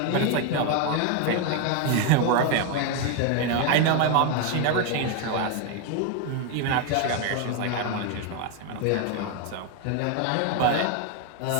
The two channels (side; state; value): both; different; correlation 0.01